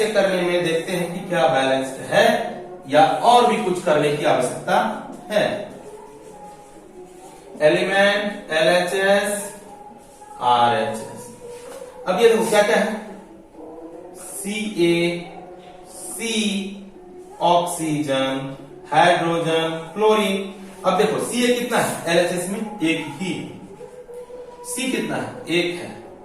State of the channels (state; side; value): identical; both; correlation 1.00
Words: करने में देखते हैं कि क्या बैलेंस्ड है या और भी कुछ करने की आवश्यकता है। Element LHS RHS। अब ये देखो क्या क्या है, CaC ऑक्सीजन हाइड्रोजन क्लोरीन। अब देखो Ca कितना है LHS में एक ही, C कितना है एक है,